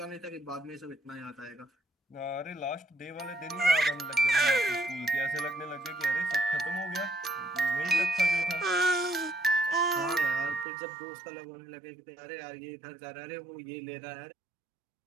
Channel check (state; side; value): drops out; left; at 10.7 s